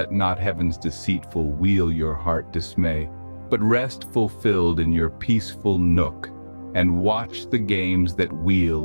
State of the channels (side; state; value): both; inverted; correlation -1.00